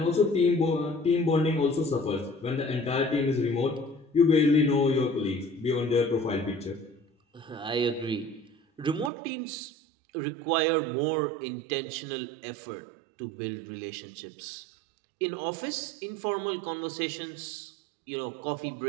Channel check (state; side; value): drops out; left; at 9.1 s